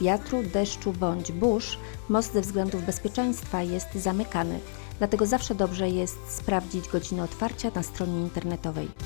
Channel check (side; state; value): right; silent; digital silence